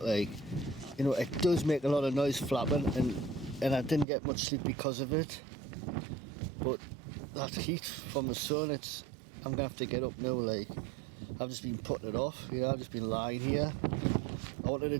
like. You know, it does make a lot of noise flapping, and I didn't get much sleep because of it. But that heat from the sun, I'm gonna have to get up now, like. I've just been putting it off, you know, I've just been lying here. I wanted to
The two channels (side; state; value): left; drops out; at 4.0 s